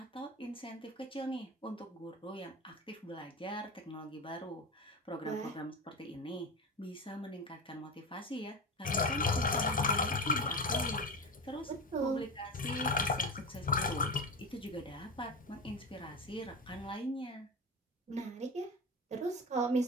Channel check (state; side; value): normal; both; correlation 0.24